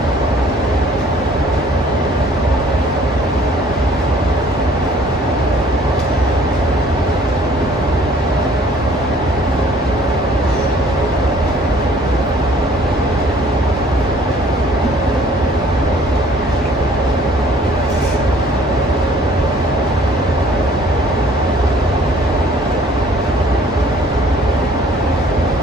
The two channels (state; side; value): normal; both; correlation 0.56